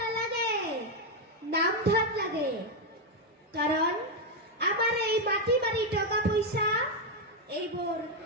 নাম ধন লাগে কাৰণ আমাৰ এই মাটি বাৰী টকা পইচা এইবোৰ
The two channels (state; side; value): normal; both; correlation 0.03